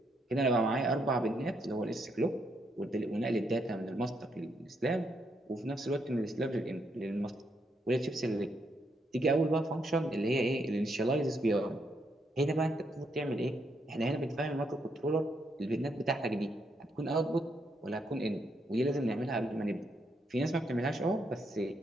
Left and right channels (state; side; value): normal; both; correlation 0.77